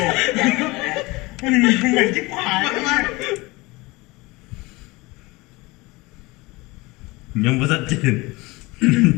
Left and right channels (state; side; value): quieter; right; 23.0 dB